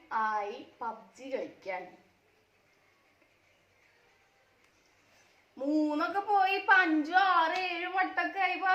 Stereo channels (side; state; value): both; identical; correlation 1.00